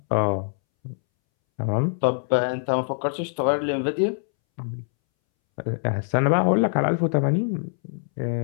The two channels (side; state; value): right; silent; 63 dB below the other